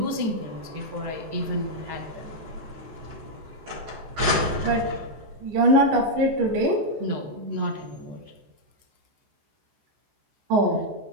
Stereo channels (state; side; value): late; left; 14 ms